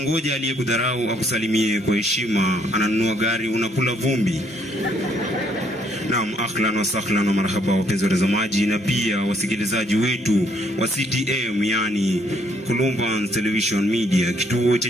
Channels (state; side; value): normal; both; correlation 0.68